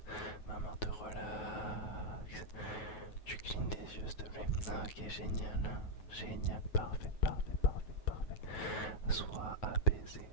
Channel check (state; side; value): late; right; 9.3 ms